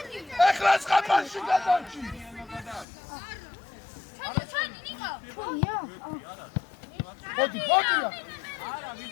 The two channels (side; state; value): right; drops out; at 2.9 s